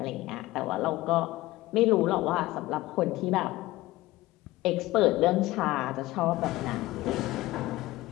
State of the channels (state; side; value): quieter; right; 18.0 dB